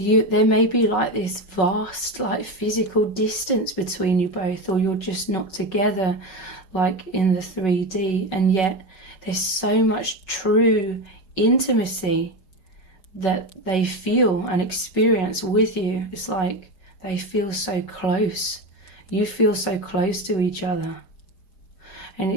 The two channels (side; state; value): right; late; 5.4 ms